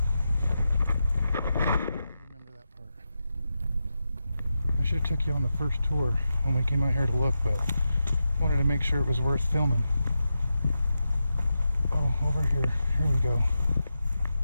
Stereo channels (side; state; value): both; inverted; correlation -0.89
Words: that part. I should have took you on the first tour when we came out here to look, but I wanted to make sure it was worth filming. Oh, over here. Here we go.